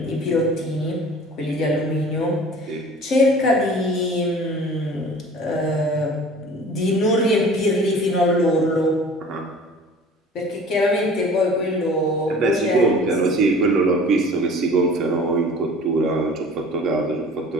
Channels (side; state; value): both; normal; correlation 0.45